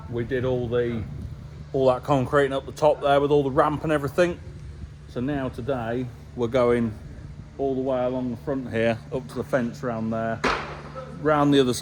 we did all that concrete up the top there with all the ramp and everything. So now today we're going all the way along the front here up to the fence round there, round the other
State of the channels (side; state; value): both; identical; correlation 1.00